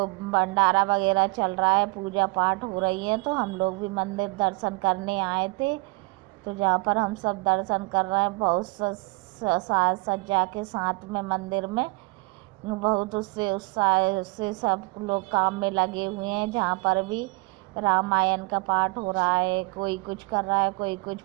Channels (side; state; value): left; quieter; 27.1 dB